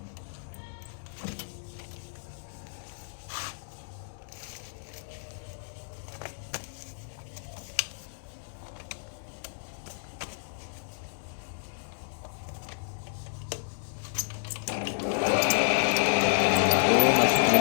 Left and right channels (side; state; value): right; silent; digital silence